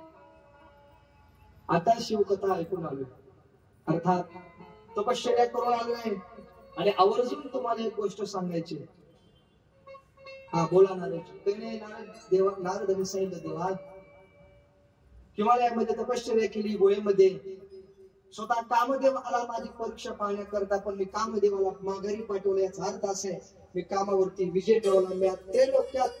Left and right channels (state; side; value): identical; both; correlation 1.00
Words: आता शिवकथा ऐकून आलो, अर्थात तपश्चर्या करून आलोय आणि आवर्जून तुम्हाला एक गोष्ट सांगायची. हा बोला नारदजी. नारदांनी सांगितलं, देवा हिमालयामध्ये तपश्चर्या केली, गोळेमध्ये स्वतः कामदेव आला माझी परीक्षा पाहण्याकरता, पण मी कामदेवाला माघारी पाठवलं. याचा अर्थ असा आहे, मी कामावरती विजय ठेवला, मी ते